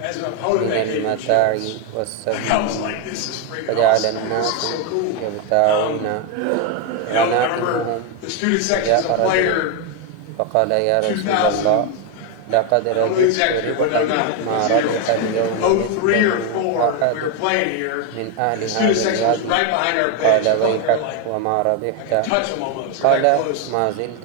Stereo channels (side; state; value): both; different; correlation 0.02